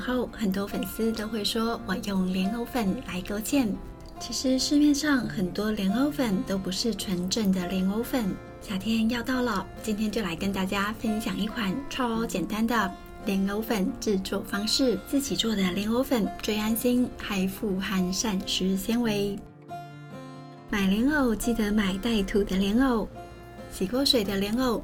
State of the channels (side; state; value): both; identical; correlation 1.00